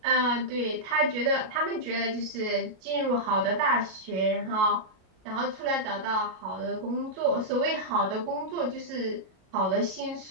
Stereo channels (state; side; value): late; left; 37 ms